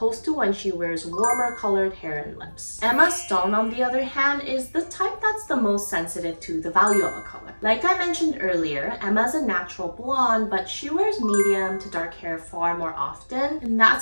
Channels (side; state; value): both; inverted; correlation -1.00